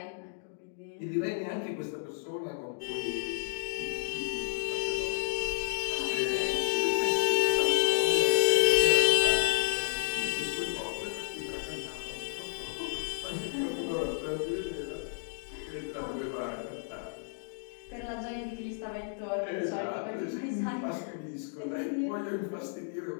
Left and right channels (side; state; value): right; silent; digital silence